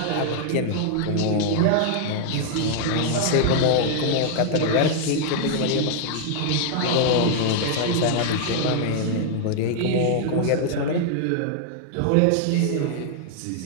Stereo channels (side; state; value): both; different; correlation -0.01